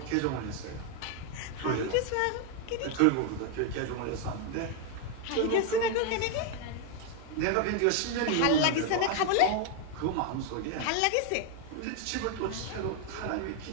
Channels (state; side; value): different; both; correlation 0.00